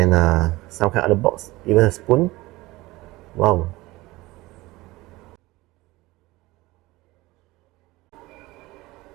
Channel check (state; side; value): quieter; left; 20.0 dB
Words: some kind of other box, even a spoon. Wow.